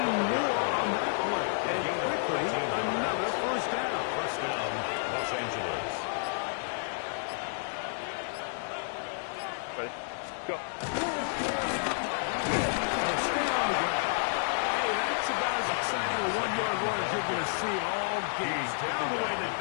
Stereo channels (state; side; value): silent; right; digital silence